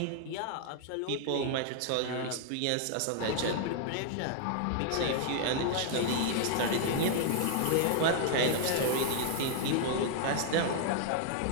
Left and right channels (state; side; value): different; both; correlation -0.01